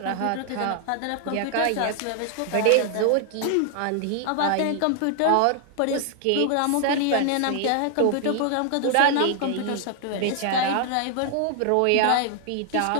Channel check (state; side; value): different; both; correlation 0.00